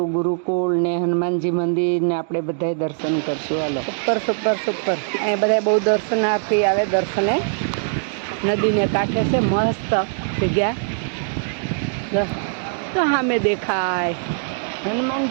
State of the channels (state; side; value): silent; left; digital silence